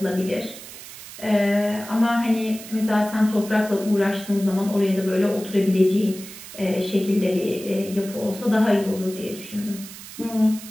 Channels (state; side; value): noise; right; hiss, 14 dB below the sound